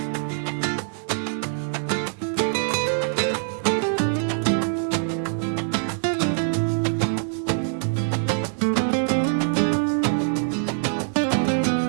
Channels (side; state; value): left; silent; digital silence